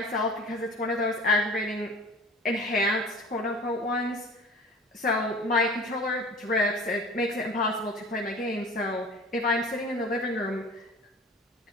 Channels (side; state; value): both; normal; correlation 0.42